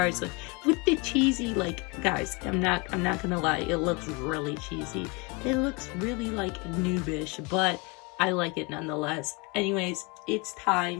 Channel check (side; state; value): right; quieter; 28.9 dB